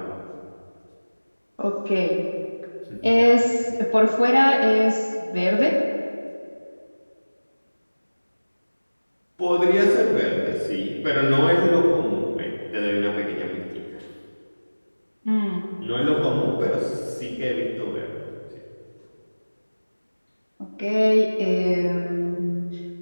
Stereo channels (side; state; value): both; inverted; correlation -1.00